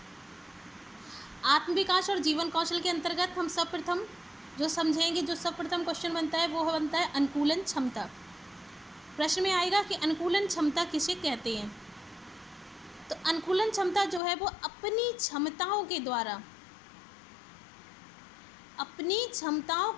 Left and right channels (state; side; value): drops out; right; at 14.2 s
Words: आत्मविकास और जीवन कौशल के अंतर्गत हम सर्वप्रथम जो समझेंगे, जो सर्वप्रथम क्वेश्चन बनता है वो बनता है अनुकूलन क्षमता। प्रश्न में आएगा कि अनुकूलन क्षमता किसे कहते हैं। तो अनुकूलन क्षमता जो है वो अपनी क्षमताओं के